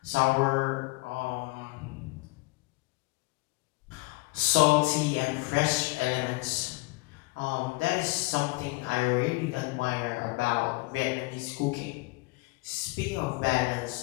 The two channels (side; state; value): right; quieter; 24.5 dB